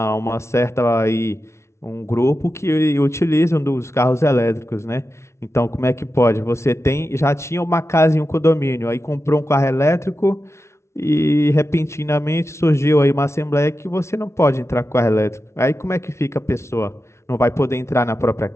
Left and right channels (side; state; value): right; late; 0.13 ms